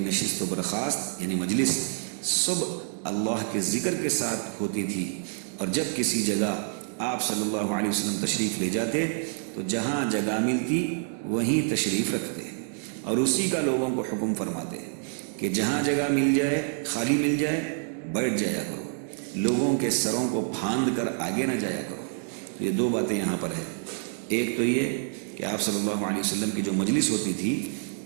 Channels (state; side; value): silent; left; 60 dB below the other